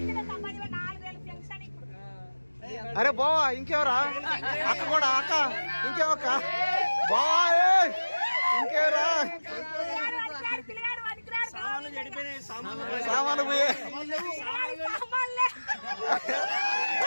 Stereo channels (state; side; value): inverted; both; correlation -1.00